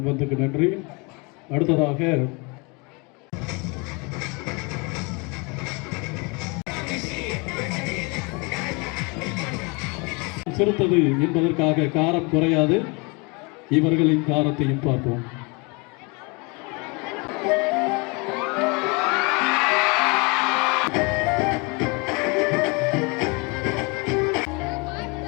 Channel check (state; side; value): quieter; right; 29.8 dB